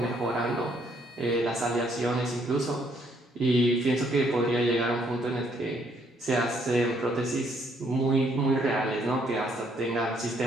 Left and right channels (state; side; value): normal; both; correlation 0.68